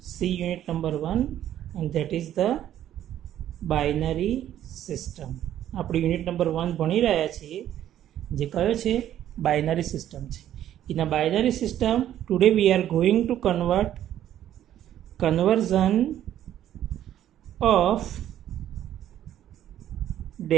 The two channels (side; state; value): left; quieter; 11.5 dB